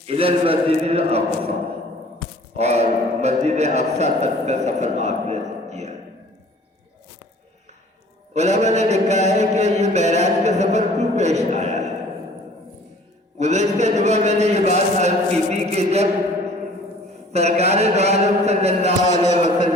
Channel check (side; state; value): both; normal; correlation 0.51